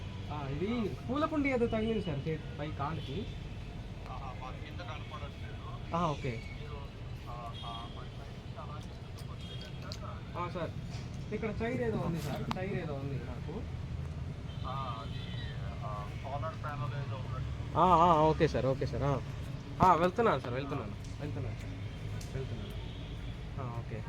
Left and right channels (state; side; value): identical; both; correlation 1.00